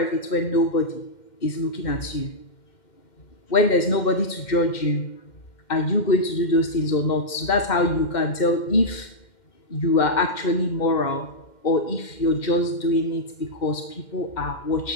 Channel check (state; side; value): late; right; 2.1 ms